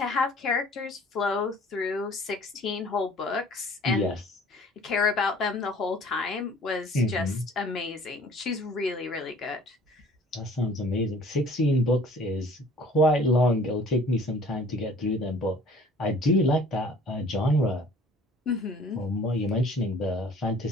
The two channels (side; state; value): both; normal; correlation 0.51